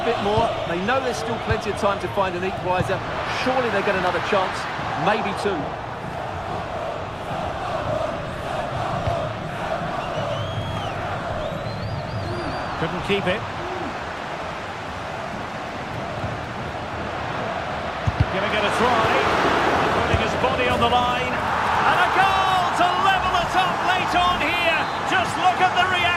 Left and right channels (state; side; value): identical; both; correlation 1.00